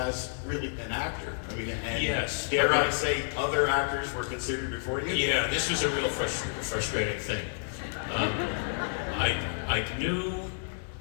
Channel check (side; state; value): right; silent; digital silence